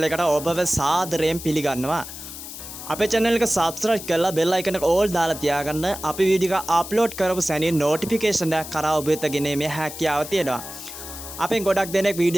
එකට ඔබව සාදරයෙන් පිළිගන්නවා. අපේ channel එක subscribe කරලා bell icon එක all දාලා තියාගන්න. අපි වීඩියෝ එක upload කරපු සැනින් notification එකක් කරා ඔබ වෙත ගෙනීමේ හැකියාව තියෙනවා. අපෙන් ගොඩක් දෙනෙක්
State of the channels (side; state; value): left; noise; hiss, 11 dB below the sound